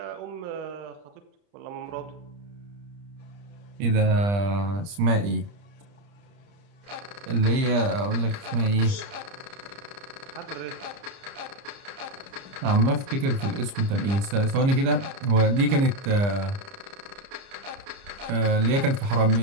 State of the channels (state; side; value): late; left; 30 ms